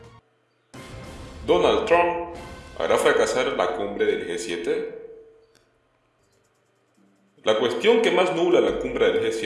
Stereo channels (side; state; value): both; identical; correlation 1.00